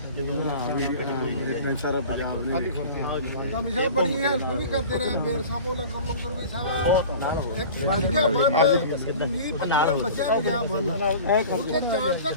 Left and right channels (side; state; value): both; inverted; correlation -0.40